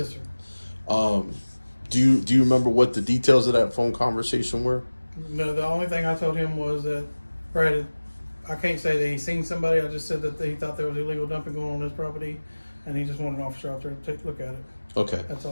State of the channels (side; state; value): both; inverted; correlation -1.00